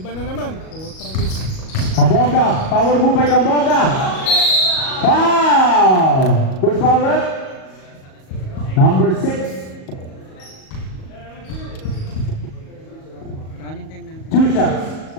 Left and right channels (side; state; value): right; late; 38 ms